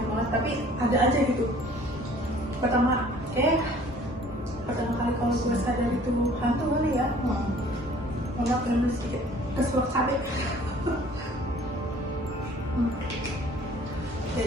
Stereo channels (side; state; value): both; normal; correlation 0.53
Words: banget, tapi ada aja gitu. Pertama kali kalau gue sadar itu hantu kali ya. Maaf karena sedikit keselak sate.